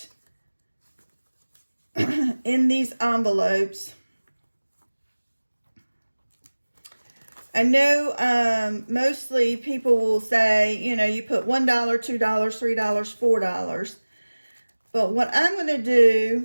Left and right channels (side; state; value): both; inverted; correlation -1.00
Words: in these envelopes, I know mostly people will say, you know, you put $1, $2, $3, $4. But what I'm going to